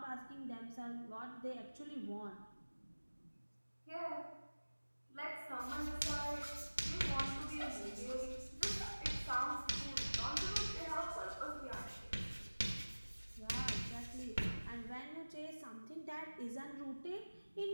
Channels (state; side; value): inverted; both; correlation -1.00